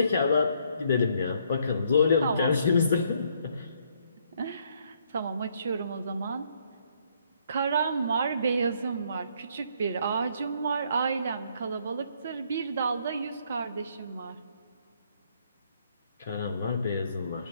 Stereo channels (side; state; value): both; inverted; correlation -0.69